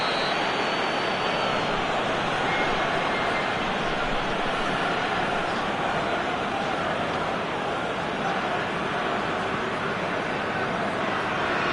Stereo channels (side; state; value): left; noise; hum, 24 dB below the sound